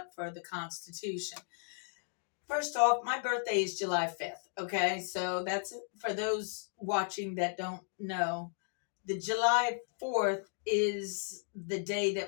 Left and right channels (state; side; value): silent; right; 54 dB below the other